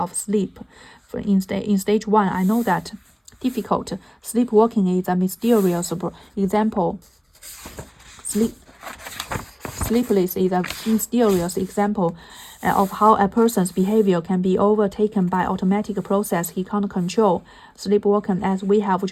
sleep. In stage 1, I know that difficult. Sleepwalking is a mysterious example. Sleepless is a mysterious example of how a person's behavior can be overtaken by automatic process he can't control. Sleepwalking, as we have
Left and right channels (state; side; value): identical; both; correlation 1.00